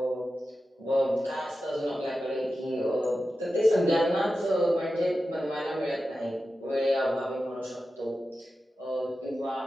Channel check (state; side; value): normal; both; correlation 0.92